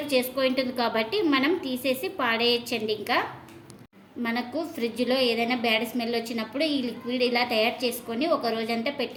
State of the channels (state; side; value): identical; both; correlation 1.00